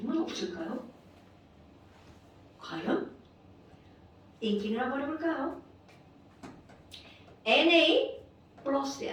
없을까요? 과연? 띵킹을 한번 해볼까요? Na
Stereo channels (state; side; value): identical; both; correlation 1.00